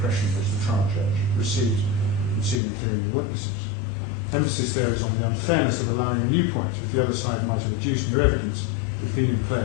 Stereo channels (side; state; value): right; drops out; at 2.6 s